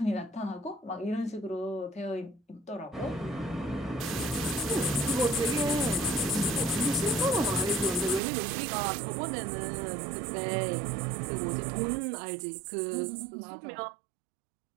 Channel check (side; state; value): left; drops out; at 8.2 s